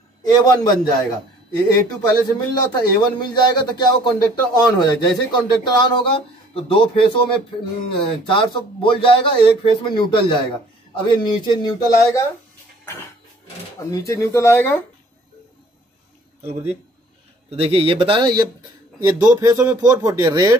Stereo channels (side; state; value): both; normal; correlation 0.56